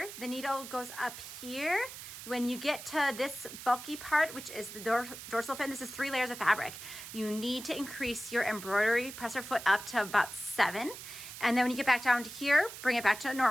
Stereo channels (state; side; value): noise; right; hiss, 12 dB below the sound